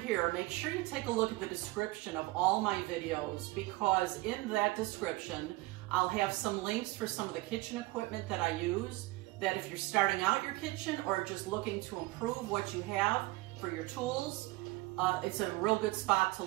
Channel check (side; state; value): left; quieter; 21.0 dB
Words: make sure you take a look at the description of all my videos, because in that description, I'll have some links for some of the kitchen equipment that I use, that if you're starting out your kitchen or just looking to improve what you have for your tools, it's a real good spot to